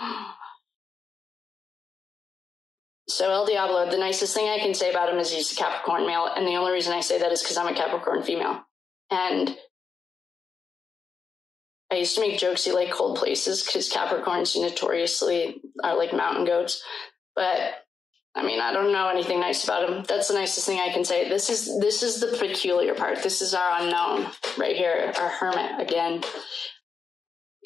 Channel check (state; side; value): quieter; right; 5.6 dB